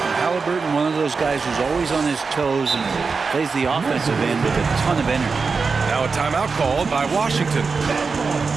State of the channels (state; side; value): quieter; left; 4.8 dB